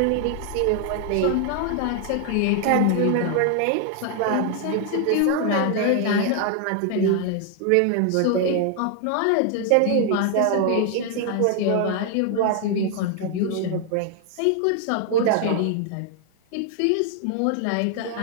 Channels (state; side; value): different; both; correlation 0.00